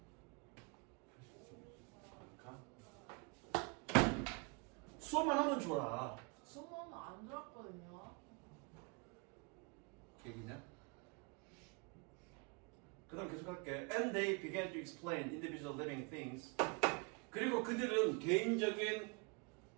수업만 하면 좋아. 수업은 안 들었거든요. 얘기냐? 그 다음 계속 할게. And they began to explain individual living things. 그리고 그들은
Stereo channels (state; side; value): quieter; left; 32.3 dB